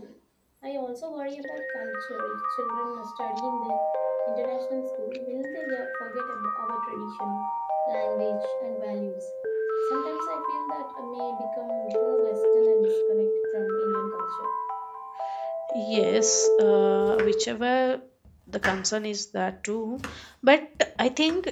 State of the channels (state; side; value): identical; both; correlation 1.00